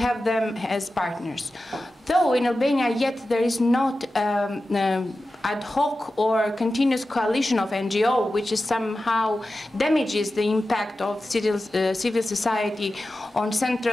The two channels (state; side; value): normal; both; correlation 0.93